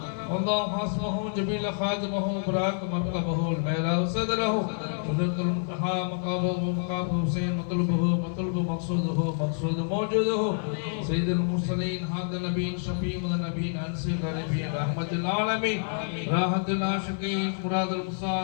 الله حسمه جميل خادمه براك مركبه الميرا صدره قدرة المنتهى مقامه مقام حسين مطلوب مقصوده مقصود موجوده سيد المرسلين هذا النبي شفيع النبي انسي النبي رحمة العالمين راحة العاشقين مراد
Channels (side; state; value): right; silent; digital silence